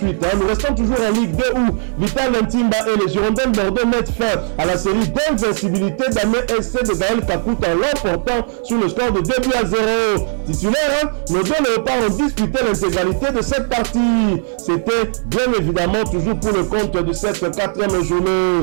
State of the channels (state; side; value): silent; left; digital silence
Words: Nous restons toujours en Ligue 2 où Vital Ntimba et les Girondins Bordeaux mettent fin à la série d'invincibilité d'Amé SC de Gaël Kakout en l'emportant sur le score de 2-0. Titulaire, nos deux léopards ont disputé l'intégralité de cette partie. C'était bien évidemment toujours pour le compte de cette 4e journée.